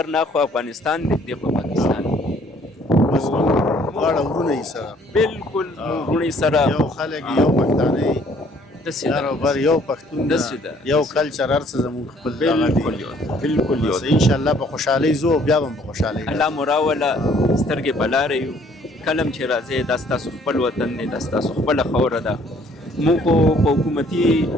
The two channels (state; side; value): normal; both; correlation 0.60